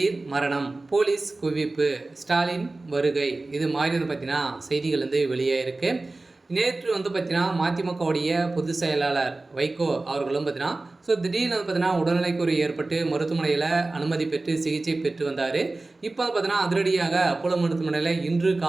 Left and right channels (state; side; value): quieter; left; 3.2 dB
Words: மரணம், போலீஸ் குவிப்பு, ஸ்டாலின் வருகை, இது மாதிரி பார்த்தீங்கன்னா செய்திகள் வெளியாகிருக்கு. நேற்று பார்த்தீங்கன்னா மதிமுகவுடைய பொதுச் செயலாளர் வைகோ அவர்களும் பார்த்தீங்கன்னா திடீர்னு பார்த்தீங்கன்னா உடல்நிலைக்குறை ஏற்பட்டு மருத்துவமனையில் அனுமதி பெற்று சிகிச்சை பெற்று வந்தார். இப்போ பார்த்தீங்கன்னா அதிரடியாக அப்போலோ மருத்துவமனையில் இன்று